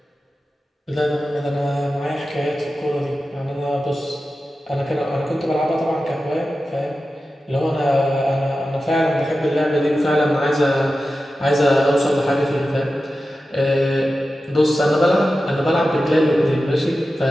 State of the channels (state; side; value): normal; both; correlation 0.93